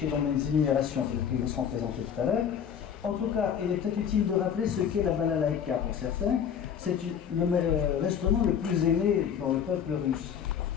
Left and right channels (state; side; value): quieter; right; 8.1 dB